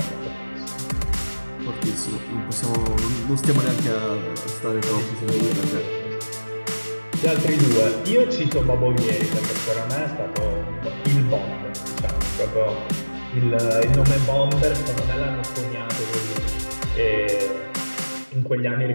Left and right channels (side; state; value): both; inverted; correlation -1.00